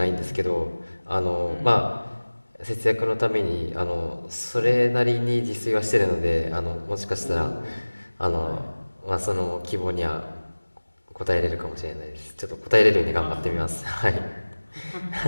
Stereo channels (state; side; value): inverted; both; correlation -1.00